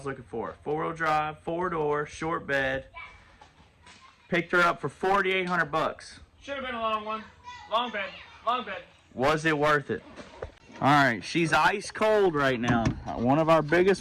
looking for. 4-wheel drive, 4-door, short bed. Picked her up for 4,800 bucks. Should have been a long one. Long bed. Long bed. Was it worth it? Alright, she's ice cold right now. One of our biggest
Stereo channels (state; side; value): identical; both; correlation 1.00